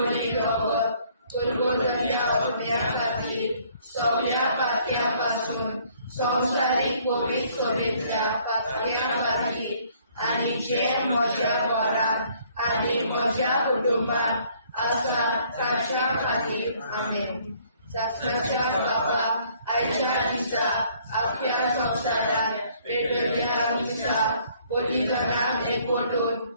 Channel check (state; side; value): inverted; both; correlation -0.62